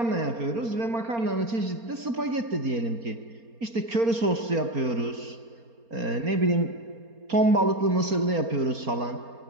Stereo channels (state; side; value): late; left; 4.3 ms